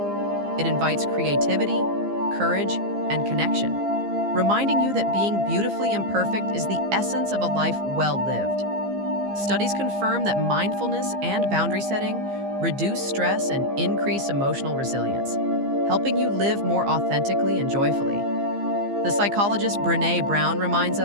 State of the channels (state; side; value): late; left; 15 ms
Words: It invites creativity, courage, and connection, reminding you that being beautifully imperfect is the essence of a life well lived. Studies confirm that mindfulness and boundary setting reduce stress and increase emotional resilience, helping you live more authentically and joyfully. The psychologist Brené Brown reminds